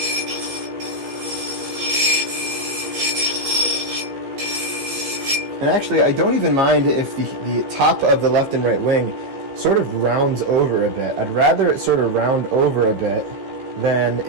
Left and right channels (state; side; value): late; left; 15 ms